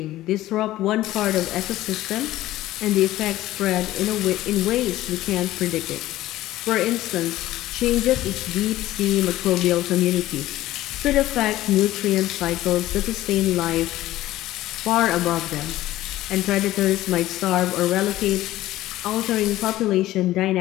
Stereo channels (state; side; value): quieter; right; 15.4 dB